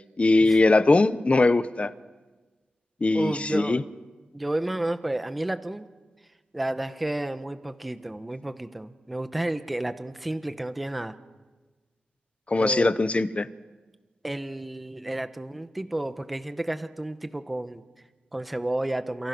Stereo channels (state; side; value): normal; both; correlation 0.94